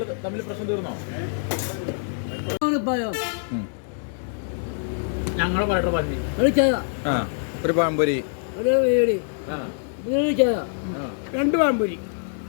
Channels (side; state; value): right; silent; digital silence